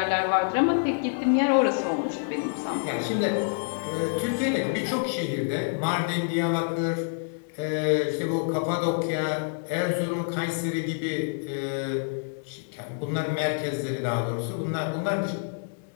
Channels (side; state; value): right; silent; digital silence